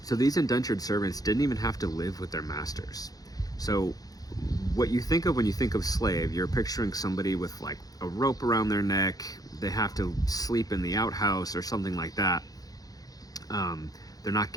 So these indentured servants didn't even have to live with their masters. So what you think of when you think of slave, you're picturing somebody with like a rope around their neck. They have to sleep in the outhouse or something like that. They're not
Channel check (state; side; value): late; right; 0.18 ms